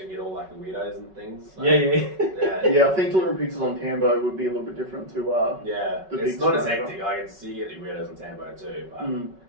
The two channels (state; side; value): late; left; 5.3 ms